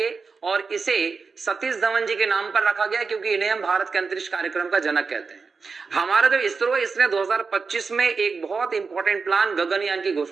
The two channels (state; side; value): quieter; left; 4.8 dB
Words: और इसे सतीश धवन जी के नाम पर रखा गया क्योंकि इन्हें हम भारत के अंतरिक्ष कार्यक्रम का जनक कहते हैं। हमारा जो इसरो है इसने 2025 में एक बहुत इंपॉर्टेंट प्लान गगनयान की